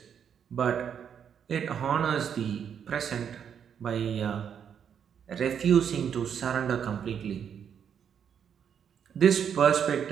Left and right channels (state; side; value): quieter; left; 8.0 dB